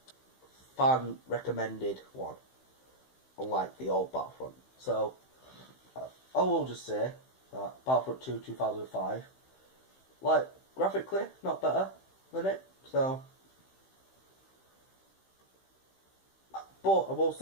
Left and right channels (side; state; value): right; late; 15 ms